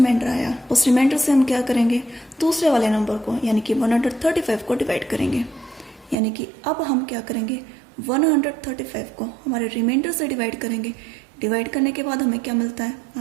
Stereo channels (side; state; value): left; drops out; at 6.2 s